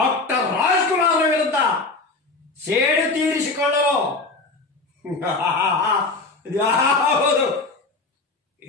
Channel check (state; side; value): quieter; right; 3.5 dB